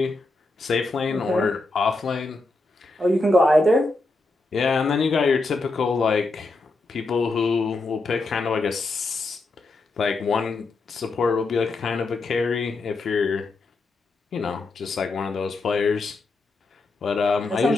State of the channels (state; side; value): quieter; right; 3.3 dB